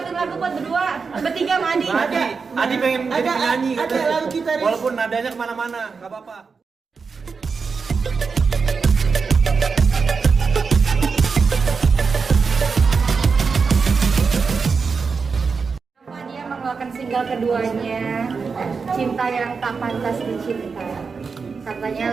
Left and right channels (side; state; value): left; quieter; 5.1 dB